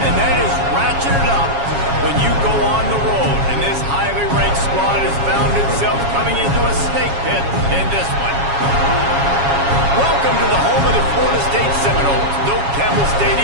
that is ratcheted up when you go on the road. And this highly ranked squad has found itself coming into a snake pit in this one. Welcome to the home of the Florida State Seminoles, Doak Campbell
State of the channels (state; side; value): late; left; 7.3 ms